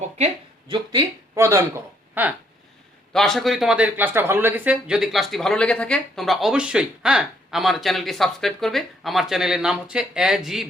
যুক্তি প্রদান করো। হ্যাঁ, তো আশা করি তোমাদের ক্লাসটা ভালো লেগেছে। যদি ক্লাসটি ভালো লেগে থাকে তোমরা অবশ্যই আমার চ্যানেলটি সাবস্ক্রাইব করবে। আমার চ্যানেলের নাম হচ্ছে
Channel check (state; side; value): normal; both; correlation 0.69